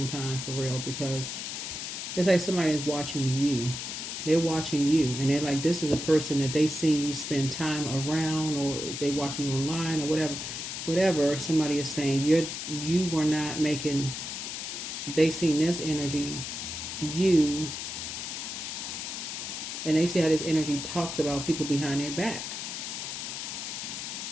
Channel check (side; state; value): left; noise; hiss, 6 dB below the sound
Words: time for real, because it's like somebody is watching you. They're watching you, and they're like, this is a person that they see you spend time around, or they watching you online or whatever. Whatever somebody is saying, you were not making. They seen this energy, you, and they see how this energy talks about people behind their back.